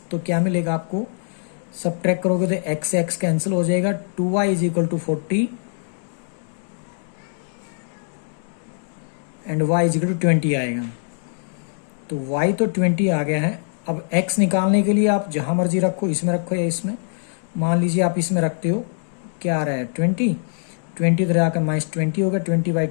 क्या मिलेगा आपको, सबट्रैक्ट करोगे तो एक्स एक्स कैंसिल हो जाएगा, 2y = 40 एंड y = 20 आएगा। तो y तो 20 आ गया है। अब x निकालने के लिए आप जहां मर्जी रखो, इसमें रखो या इसमें, मान लीजिए आप इसमें रखते हो, क्या आ रहा है 20 इधर आकर -20 होगा,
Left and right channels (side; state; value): right; silent; digital silence